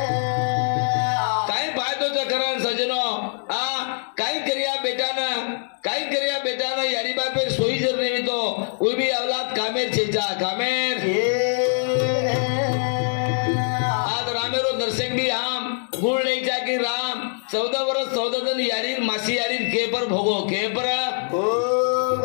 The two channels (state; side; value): silent; right; digital silence